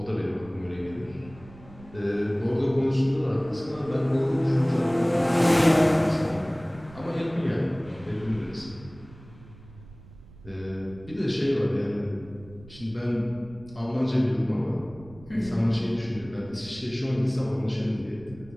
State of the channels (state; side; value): noise; right; rumble, 20 dB below the sound